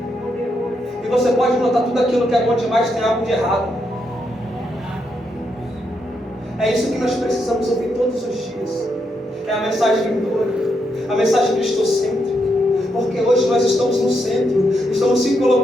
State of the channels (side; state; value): both; normal; correlation 0.80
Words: E você pode notar tudo aquilo que é bom demais tem algo de errado. É isso que nós precisamos ouvir todos os dias. É a mensagem vindoura, a mensagem cristocêntrica. Porque hoje nós estamos no centro, estamos se